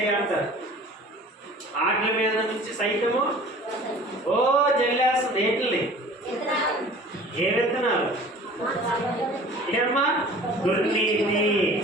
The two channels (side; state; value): both; normal; correlation 0.45